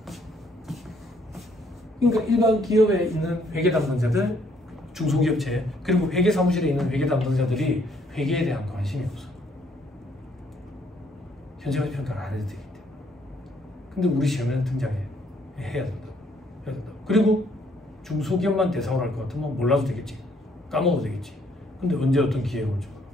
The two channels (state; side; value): normal; both; correlation 0.67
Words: 그러니까 일반 기업에 있는 회계 담당자들, 중소기업체 그리고 회계사무실에 있는 회계 담당자들이 회계에 대한 관심이 없어. 현재가치 평가를 안 해도 되기 때문에. 근데 우리 시험에는 등장해야 된다고. 그리고 중소기업만 대상으로 할 것 같으면 몰라도 되겠지. 까먹어도 되겠지. 근데 언제 어떤 기회가 올지 몰라.